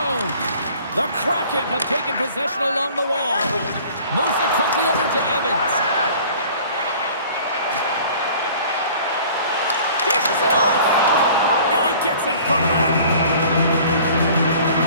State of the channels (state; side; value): inverted; both; correlation -0.49